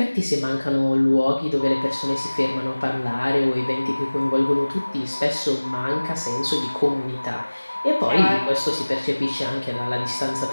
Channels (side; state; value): both; inverted; correlation -1.00